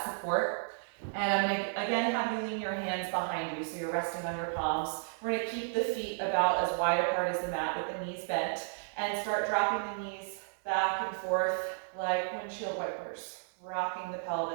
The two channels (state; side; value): silent; left; digital silence